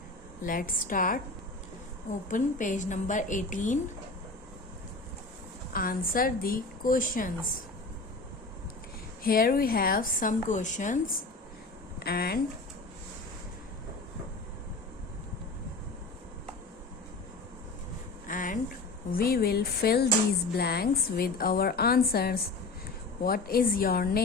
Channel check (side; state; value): right; quieter; 3.4 dB